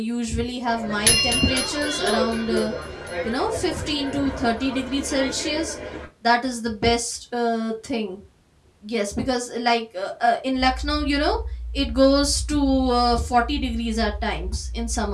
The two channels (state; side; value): identical; both; correlation 1.00